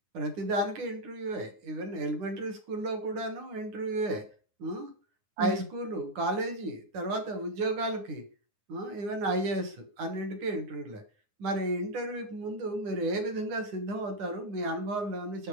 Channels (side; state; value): left; late; 9.7 ms